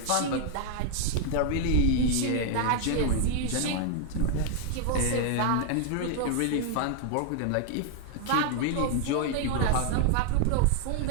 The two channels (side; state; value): both; different; correlation 0.00